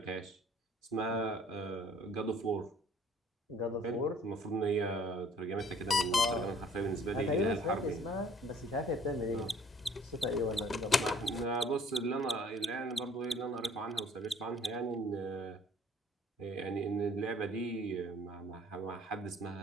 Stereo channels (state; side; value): normal; both; correlation 0.56